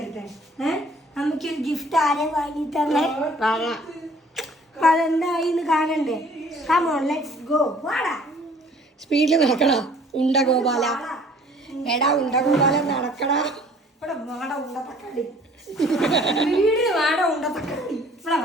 നമുക്കൊരു ഗിഫ്റ്റ് ആരെ വാങ്ങി തന്നെ അതെന്തായിന്ന് കാണണ്ടേ? Come on let's go. വാടാ സ്പീഡിൽ നടക്കടാ ഉണ്ട ഗോപാല. എടാ ഉണ്ട ഗോപാല നടക്കടാ. ഇവിടെ വാട ഉണ്ട തക്കാളി. വീട് വാട ഉണ്ട തക്കാളി. ഇവിടെ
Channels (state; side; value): normal; both; correlation 0.54